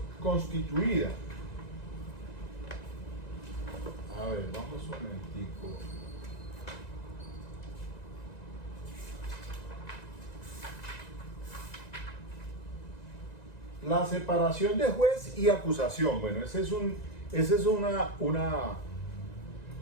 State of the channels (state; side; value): late; right; 1.9 ms